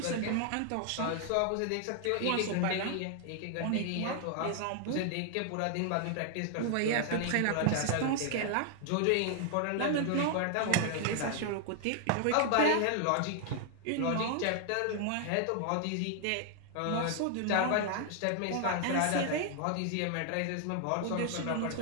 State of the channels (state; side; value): different; both; correlation 0.00